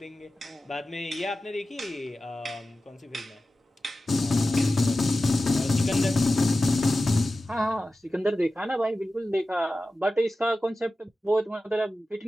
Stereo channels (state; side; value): normal; both; correlation 0.94